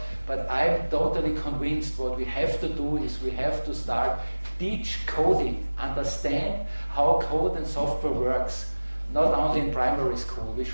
but I'm totally convinced what we have to do is we have to start teach coding, understand how code and software works, not only in primary school. We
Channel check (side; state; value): both; inverted; correlation -1.00